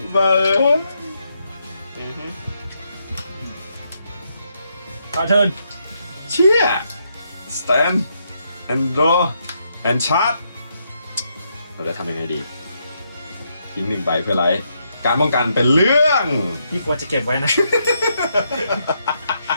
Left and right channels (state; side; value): inverted; both; correlation -0.78